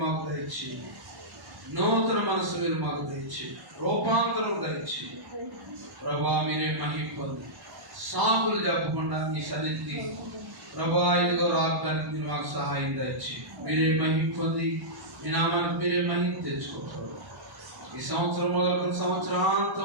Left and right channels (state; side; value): late; left; 1.0 ms